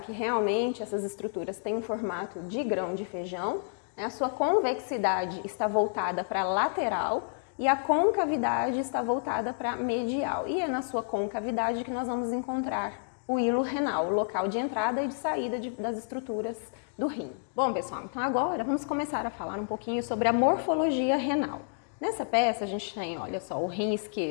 que realmente essas estruturas têm um formato de grão de feijão, né, a sua convexidade está voltada para a lateral, e a concavidade está voltada para medial. E é na sua concavidade que nós vamos encontrar o hilo renal, o local de entrada e de saída das estruturas do rim. Bom, pessoal, então agora vamos começar a falar um pouquinho sobre a morfologia renal. Nessa peça a gente tem, olha só, o rim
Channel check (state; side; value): silent; right; digital silence